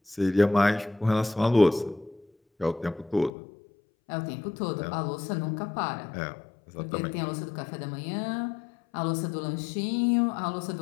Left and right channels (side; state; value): right; drops out; at 3.3 s